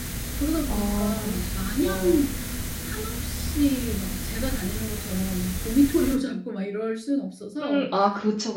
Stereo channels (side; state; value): both; identical; correlation 1.00